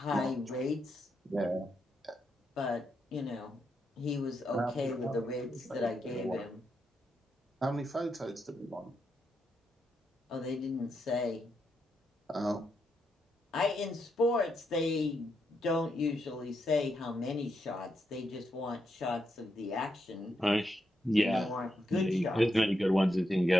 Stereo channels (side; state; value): both; normal; correlation 0.82